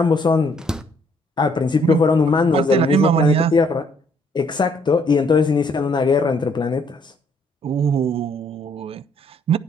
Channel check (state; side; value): normal; both; correlation 0.66